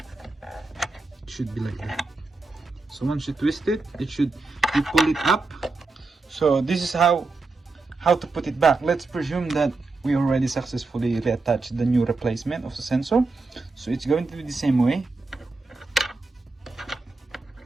It should be like that. So once you twist it, you pull it up. So this is how to put it back. Let's presume that we already successfully reattached the new replacement of the sensor. So it's going to be the same way.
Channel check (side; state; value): left; quieter; 3.6 dB